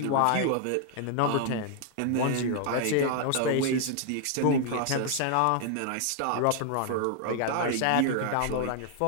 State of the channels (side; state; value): both; different; correlation 0.00